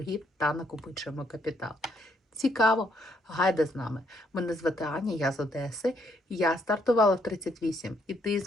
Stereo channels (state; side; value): normal; both; correlation 0.72